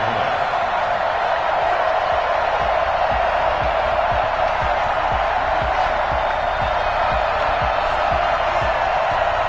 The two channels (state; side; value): identical; both; correlation 1.00